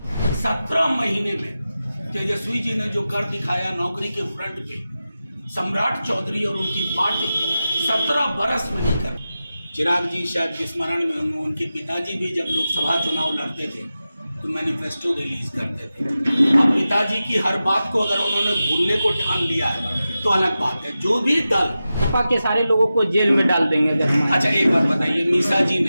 17 महीने में तेजस्वी जी ने जो कर दिखाया नौकरी के फ्रंट पे, सम्राट चौधरी और उनकी पार्टी 17 बरस में नहीं कर। चिराग जी शायद स्मरण में होंगे, उनके पिताजी भी जब लोकसभा चुनाव लड़ते थे तो मैनिफेस्टो रिलीज करते थे। अब पिताजी की हर बात को अगर उन्होंने भूलने को ठान लिया है तो अलग बात है। जो भी दल सपा के सारे लोगों को जेल में डाल देंगे अगर। अच्छा एक बात बताइए, निशा जी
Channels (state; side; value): inverted; both; correlation -0.93